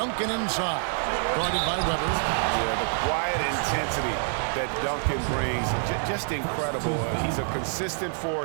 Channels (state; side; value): silent; left; digital silence